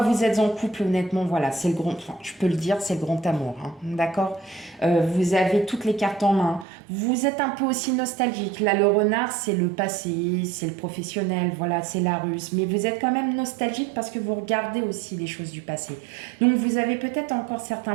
vous êtes en couple, honnêtement, voilà, c'est le grand, enfin, je peux le dire, c'est le grand amour, hein, d'accord. Vous avez toutes les cartes en main. Vous êtes un peu aussi nostalgique. Là, le renard, c'est le passé, c'est le professionnel, voilà, c'est la ruse. Mais vous êtes quand même nostalgique parce que vous regardez aussi les choses du passé. Donc, vous avez peut-être encore certains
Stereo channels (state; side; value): drops out; left; at 6.7 s